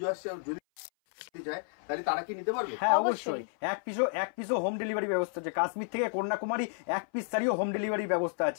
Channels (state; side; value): silent; right; 57 dB below the other